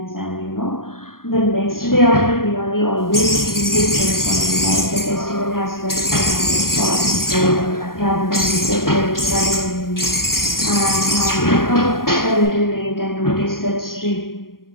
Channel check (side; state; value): right; late; 0.91 ms